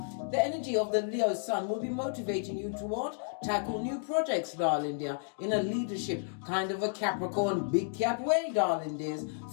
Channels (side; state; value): right; silent; digital silence